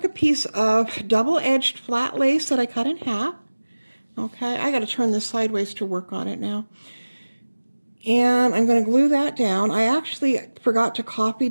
a piece of double-edged flat lace that I cut in half. Okay, I got to turn this sideways to work on it now. And I'm going to glue that down. I actually forgot to copy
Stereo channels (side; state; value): both; inverted; correlation -1.00